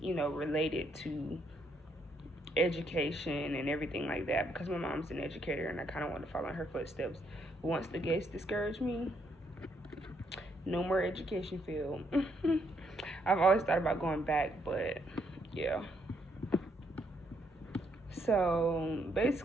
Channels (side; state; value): both; normal; correlation 0.73